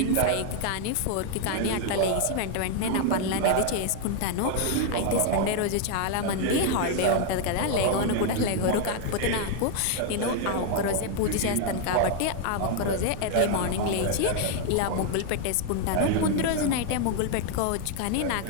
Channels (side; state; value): both; different; correlation 0.00